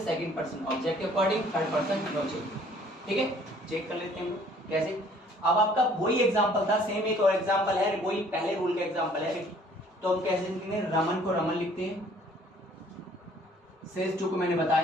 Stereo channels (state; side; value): normal; both; correlation 0.57